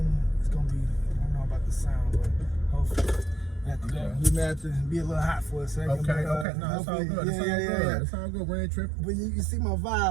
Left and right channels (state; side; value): drops out; left; at 6.5 s